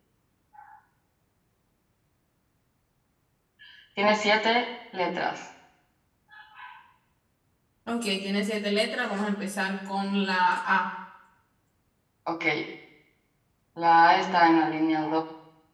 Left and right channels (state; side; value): identical; both; correlation 1.00